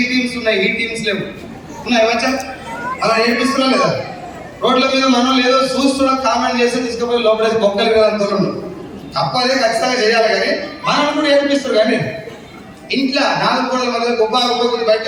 టీమ్స్ ఉన్నాయి, ఈ టీమ్స్ లేవు. ఉన్నాయి వచ్చా? అలా నేర్పిస్తున్నా లేదా? రోడ్ల మీద మనం లేదో చూస్తున్నా కామెంట్ చేసి తీసుకుపోయి లోపలేసి బొక్కలు కదా అంతా తప్పదే ఖచ్చితంగా చేయాలి. కానీ మనం కూడా ఏర్పిస్తారు. కానీ ఇంట్లో 4 గోడల మధ్య గొప్ప బయట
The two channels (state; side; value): identical; both; correlation 1.00